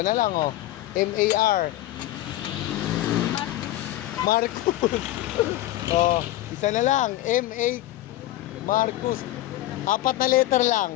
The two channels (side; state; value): right; quieter; 15.5 dB